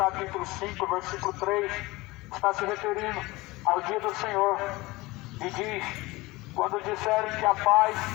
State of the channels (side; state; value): right; quieter; 21.3 dB